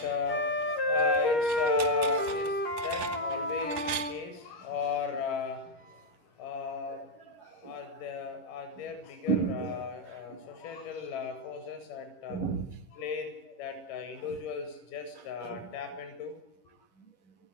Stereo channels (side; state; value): right; late; 11 ms